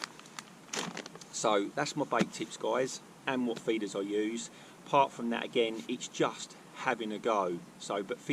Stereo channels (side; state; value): both; identical; correlation 1.00